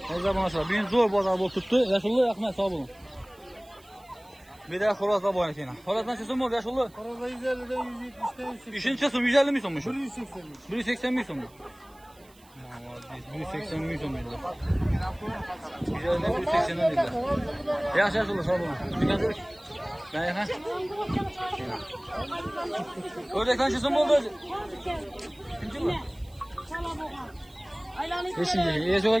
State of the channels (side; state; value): right; noise; hiss, 28 dB below the sound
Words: Ne zaman aşağı? Bugün zor bu azabı tuttu. Yaşullu yakmaya sağ olun. Bir daha Horaz'la bu oynatayım. Horaz'dan çözüm oldu yaşullu. Arada 150'den 170'ten 180. İşin çözüm 150 mi sonmuş? 180'miş. 180 mi sonmuş? 180 mi sonmuş? 150'den 180'den dediler. Yaş yaşullu sağ olun. Dikkat et. Ben yakın. Ördekten çözüm oldu. Kimci mi? Beşinci. İyi